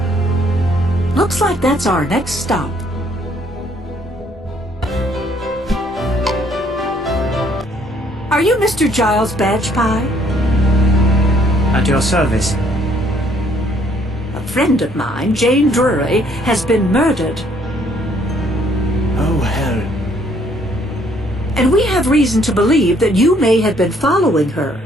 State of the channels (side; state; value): both; normal; correlation 0.64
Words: Looks like that's our next stop. Are you Mr. Giles Badgepie? At your service. A friend of mine, Jane Drury, has been murdered. Oh, hell. And we have reason to believe that you may have been following her.